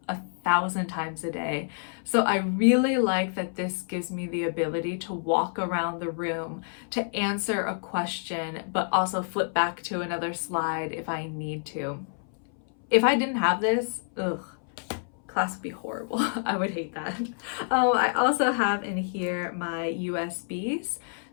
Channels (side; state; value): right; silent; 59 dB below the other